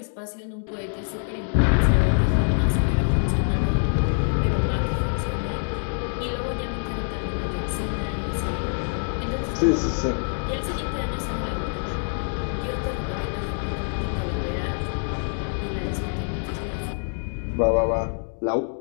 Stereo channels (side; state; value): right; silent; 62 dB below the other